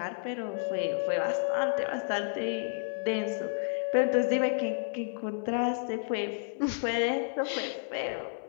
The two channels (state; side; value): silent; right; 57 dB below the other